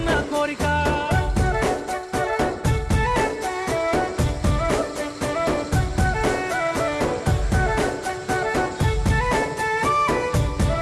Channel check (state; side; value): identical; both; correlation 1.00